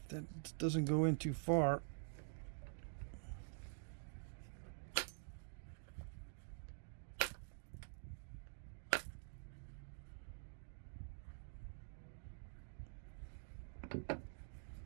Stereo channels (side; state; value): left; silent; digital silence